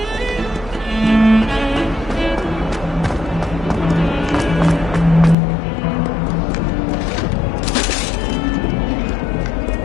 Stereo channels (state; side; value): drops out; right; at 5.4 s